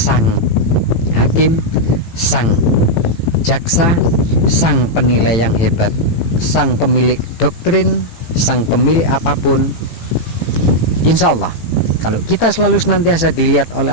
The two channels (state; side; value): late; right; 18 ms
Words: hakim, sang jaksa, sang penilai yang hebat, sang pemilik doktrin, sang pemilik apapun. Insya Allah kalau kita selalu senantiasa dilihat oleh